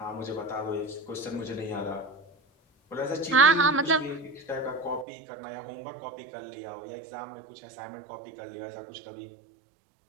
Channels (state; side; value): drops out; left; at 5.1 s